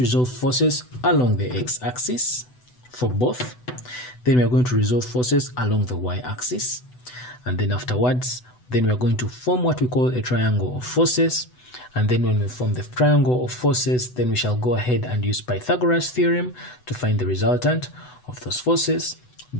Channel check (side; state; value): right; late; 8.0 ms